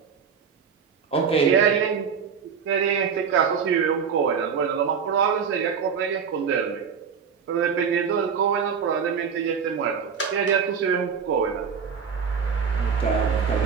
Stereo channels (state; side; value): quieter; left; 6.6 dB